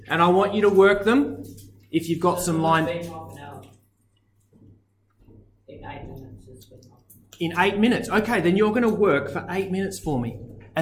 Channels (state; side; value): identical; both; correlation 1.00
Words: And I want you to work them if you've got some line... Half an hour. In 8 minutes, it's been half an hour. In 8 minutes. Okay, then you're going to work for 8 minutes for me.